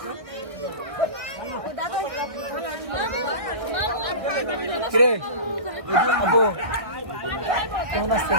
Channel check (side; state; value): left; late; 1.7 ms